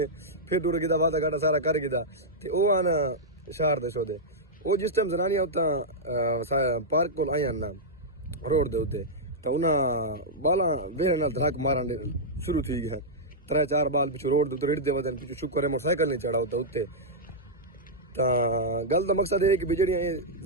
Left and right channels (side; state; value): both; normal; correlation -0.08